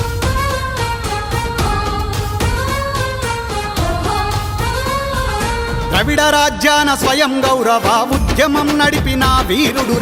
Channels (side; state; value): both; identical; correlation 1.00